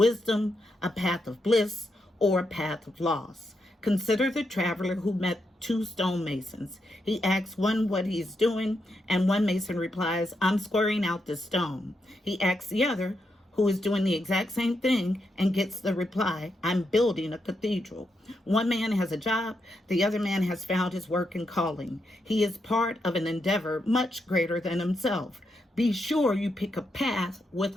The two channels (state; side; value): normal; both; correlation 0.82